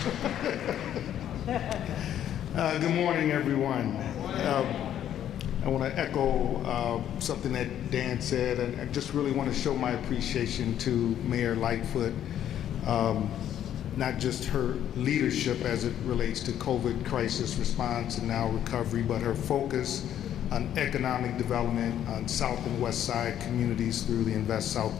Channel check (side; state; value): right; quieter; 10.7 dB